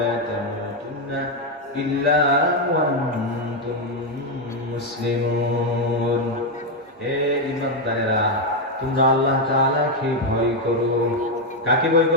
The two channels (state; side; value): normal; both; correlation 0.04